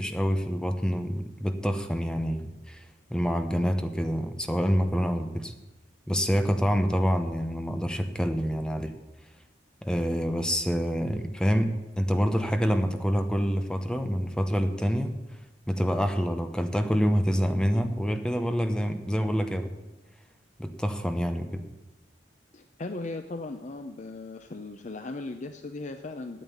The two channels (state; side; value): normal; both; correlation 0.93